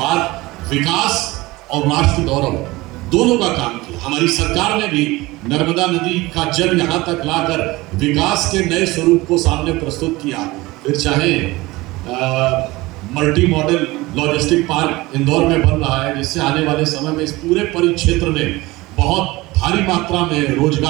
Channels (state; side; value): quieter; left; 20.6 dB